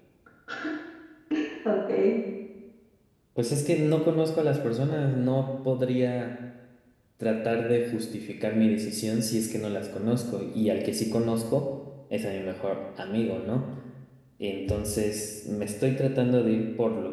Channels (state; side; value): identical; both; correlation 1.00